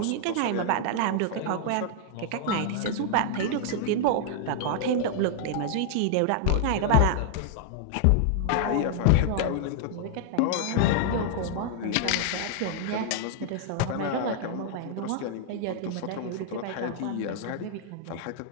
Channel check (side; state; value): both; different; correlation 0.00